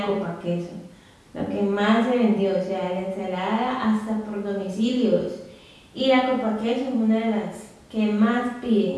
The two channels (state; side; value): identical; both; correlation 1.00